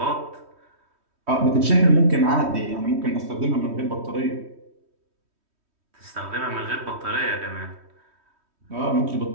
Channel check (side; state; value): left; late; 3.1 ms